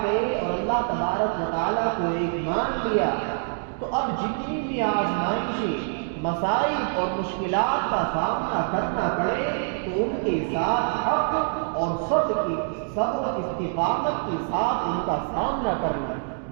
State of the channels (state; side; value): silent; left; digital silence